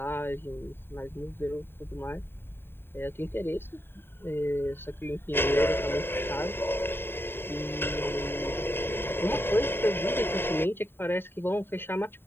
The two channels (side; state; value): right; late; 0.11 ms